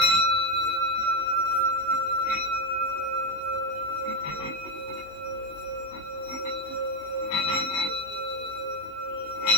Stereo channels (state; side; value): late; right; 19 ms